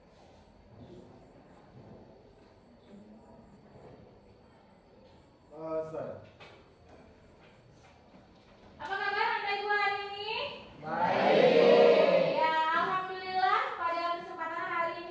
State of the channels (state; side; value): identical; both; correlation 1.00